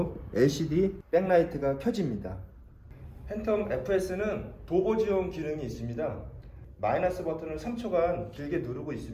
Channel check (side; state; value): both; identical; correlation 1.00